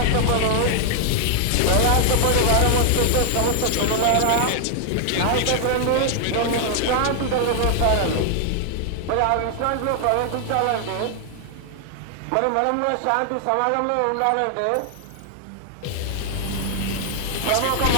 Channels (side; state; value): both; different; correlation 0.00